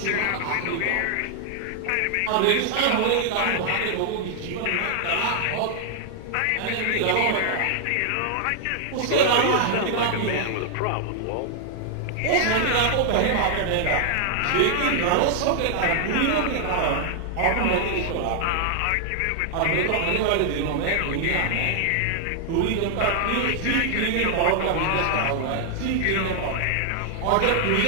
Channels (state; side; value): different; both; correlation 0.00